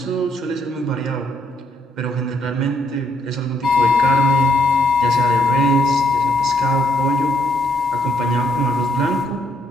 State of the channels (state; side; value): normal; both; correlation 0.71